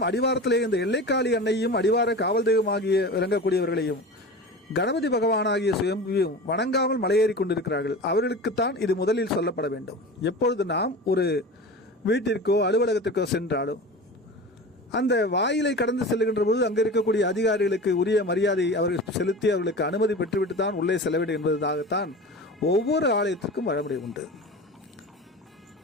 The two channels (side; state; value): both; normal; correlation 0.32